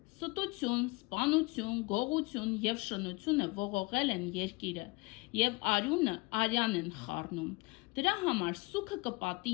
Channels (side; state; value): right; quieter; 25.4 dB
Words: Ստություն, սպանություն, գողություն և շնությունը ողողել են երկիրը, և արյան են խառնում, դրա համար սուգը կպատի